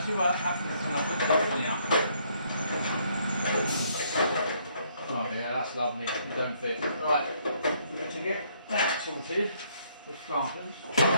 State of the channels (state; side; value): inverted; both; correlation -0.68